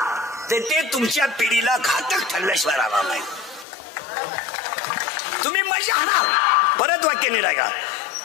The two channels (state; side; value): drops out; right; at 3.7 s